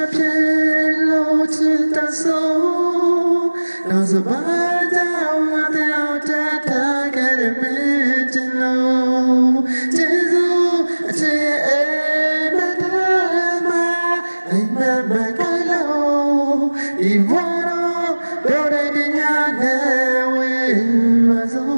မဖြစ်လို့ချစ်တဲ့ဆုံးနောက်စပါးကြောင့်ငါတို့တက်ခဲ့တဲ့မင်းချင်လို့ကျေးဇူးအချစ်ရဲ့မတဲ့မှာအိမ်မက်မကလို့ဒီဘဝတော့ဒိုရတဲ့ညနဲ့ဝေးပါစို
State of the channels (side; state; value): both; inverted; correlation -1.00